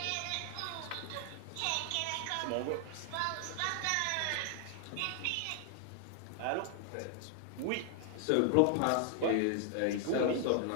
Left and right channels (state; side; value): different; both; correlation 0.00